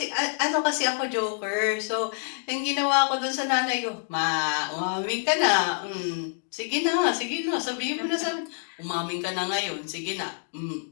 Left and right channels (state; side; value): silent; right; digital silence